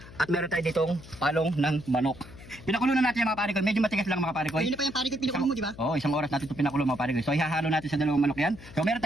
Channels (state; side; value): noise; left; hum, 18 dB below the sound